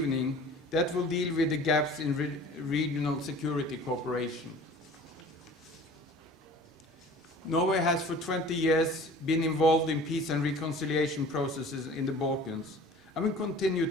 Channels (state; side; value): normal; both; correlation 0.45